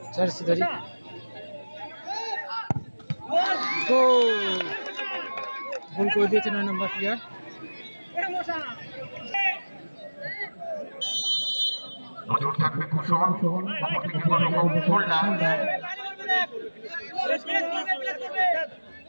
জার্সি ধরি। গোল করে দিয়েছে 9 নম্বর প্লেয়ার। নজর থাকবে কুশল, অপরদিকে হোল্ডার।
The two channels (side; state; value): both; inverted; correlation -1.00